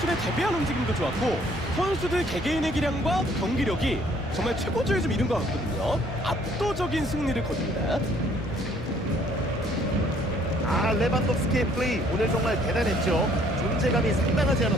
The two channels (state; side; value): normal; both; correlation 0.62